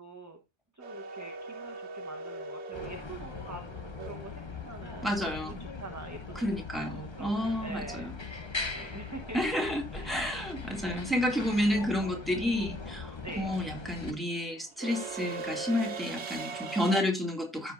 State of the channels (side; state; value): both; normal; correlation 0.64